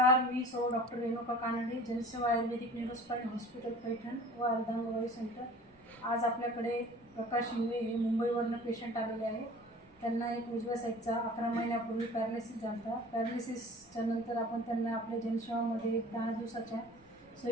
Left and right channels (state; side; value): noise; right; rumble, 28 dB below the sound